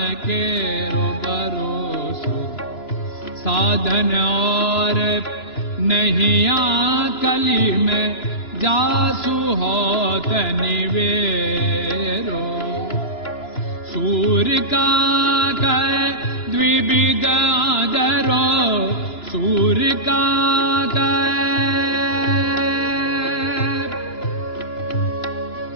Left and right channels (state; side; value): late; right; 2.9 ms